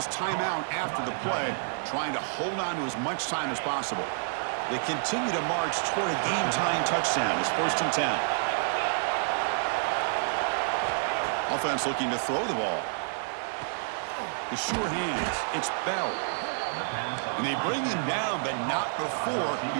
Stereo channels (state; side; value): silent; left; digital silence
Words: timeout after the play, trying to hold on to as much time as possible. They continue to march toward a game-tying touchdown. It's 1st and 10. Offense looking to throw the ball. The sure hands. It's Bell. And they bring him down, but not before